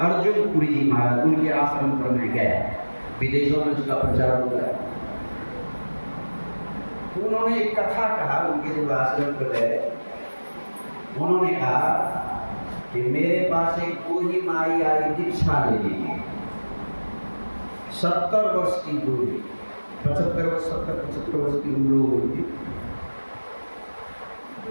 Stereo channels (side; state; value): both; inverted; correlation -1.00